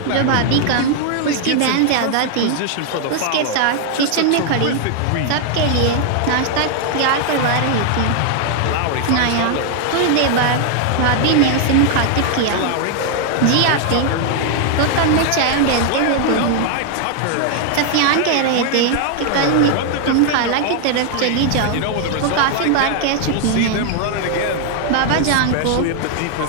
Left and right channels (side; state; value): both; different; correlation 0.00